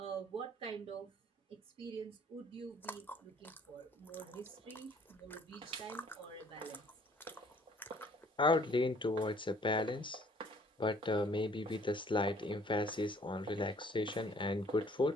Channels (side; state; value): both; normal; correlation 0.58